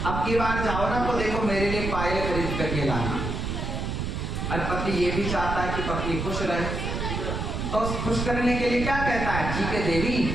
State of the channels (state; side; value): noise; right; rumble, 3 dB below the sound